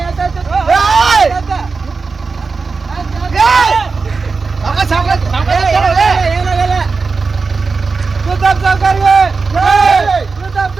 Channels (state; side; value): quieter; left; 4.5 dB